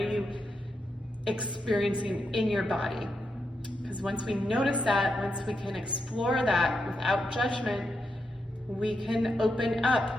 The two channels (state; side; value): normal; both; correlation 0.84